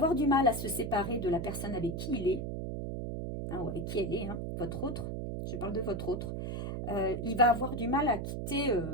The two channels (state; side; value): noise; right; hum, 4 dB below the sound